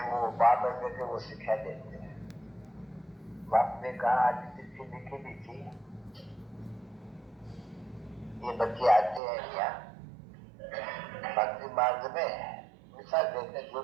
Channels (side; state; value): left; drops out; at 9.2 s